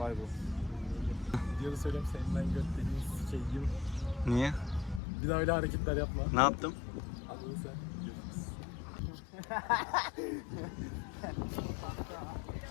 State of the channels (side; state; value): right; drops out; at 5.0 s